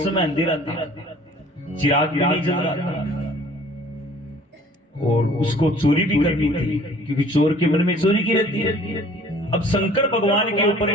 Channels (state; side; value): normal; both; correlation 0.52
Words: समय अंधेरा था, चिराग भी नहीं जल रहा था, और उसको चोरी भी करनी थी, क्योंकि चोर के मन में चोरी की रहती है। अब शंकर भगवान के ऊपर